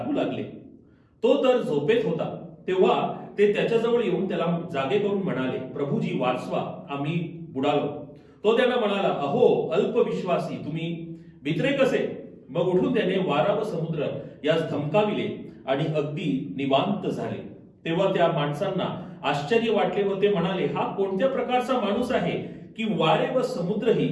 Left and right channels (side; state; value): both; identical; correlation 1.00